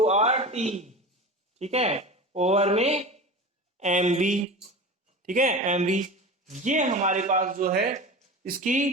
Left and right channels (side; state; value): both; normal; correlation 0.31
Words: R T. ठीक है, ओवर में एम बी। ठीक है, एम बी। ये हमारे पास जो है